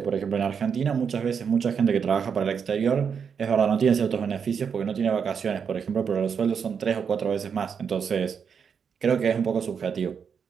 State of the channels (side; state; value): left; quieter; 6.7 dB